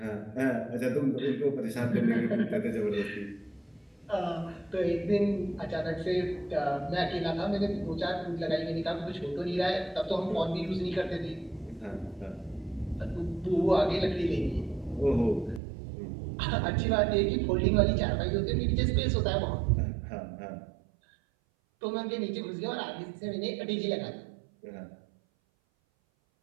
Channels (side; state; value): left; drops out; at 15.6 s